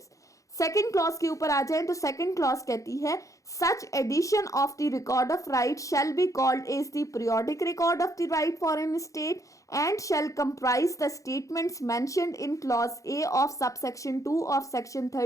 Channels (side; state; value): right; late; 0.16 ms